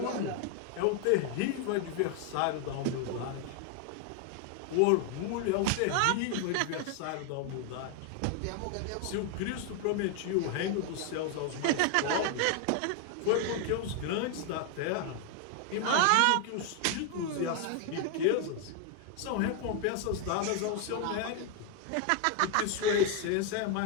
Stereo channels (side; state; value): both; different; correlation 0.00